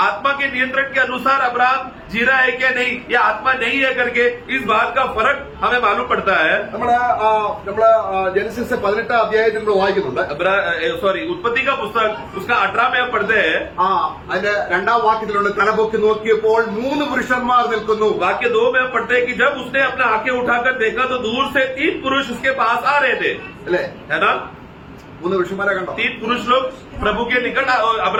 आत्मा के नियंत्रण के अनुसार अब्राहम जी रहा है क्या नहीं या आत्मा नहीं है करके इस बात का फर्क हमें मालूम पड़ता है. നമ്മള് ജനസിസ് 18-ാം അധ്യായത്തിൽ നമ്മൾ വായിക്കുന്നുണ്ട്. सॉरी उत्पत्ति का पुस्तक उसका 18 में हम पढ़ते हैं. അതിന്റെ 2-ാം വാക്യത്തിലുണ്ട്, തലപൊക്കി നോക്കിയപ്പോൾ 3 പുരുഷന്മാർ നിൽക്കുന്നു. वाक्य 2 में हम पढ़ते हैं कि जब उसने अपना आंखें उठाकर देखा तो दूर से 3 पुरुष उसके पास आ रहे थे. അല്ലേ? है ना. 3 പുരുഷന്മാരെ കണ്ടോ? 3 पुरुष लोग प्रभु के निकट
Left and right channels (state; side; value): identical; both; correlation 1.00